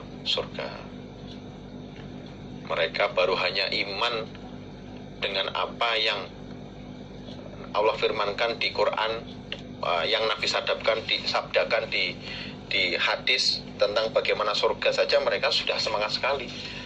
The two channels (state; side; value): identical; both; correlation 1.00